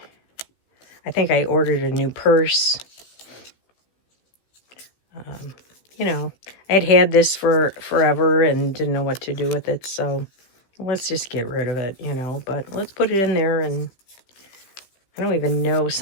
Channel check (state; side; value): late; right; 15 ms